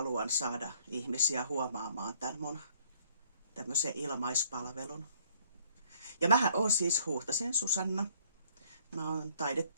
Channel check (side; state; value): both; inverted; correlation -0.62